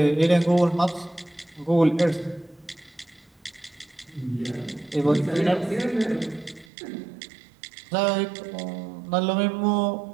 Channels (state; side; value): drops out; left; at 6.7 s